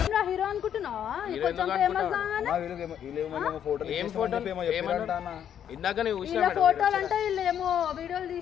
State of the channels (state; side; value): quieter; right; 9.4 dB